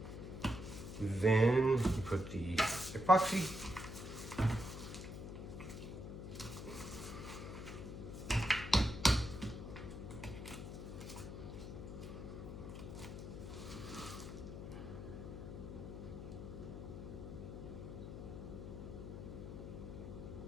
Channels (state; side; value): noise; left; hum, 8 dB below the sound